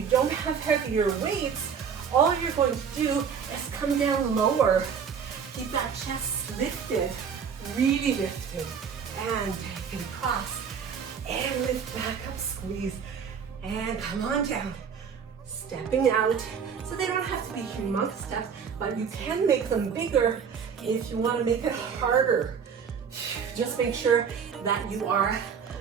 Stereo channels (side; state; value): left; quieter; 6.8 dB